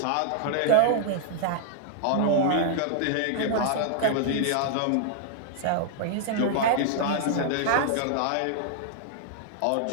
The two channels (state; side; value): different; both; correlation -0.01